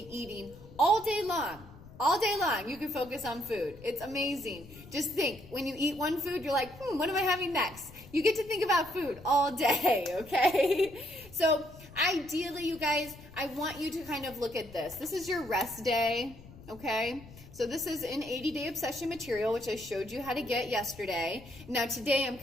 eating all day long. All day long, you can focus on food. It's amazing. Just think, when you eat one food, you're like, what am I having next? You get to think about food all day, okay? So ideally, you guys, I want you to kind of look at this. This is your rest day, okay? So this is an 80-day obsession material, which I showed you how to get yesterday. Now today I'm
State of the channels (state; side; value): noise; left; rumble, 19 dB below the sound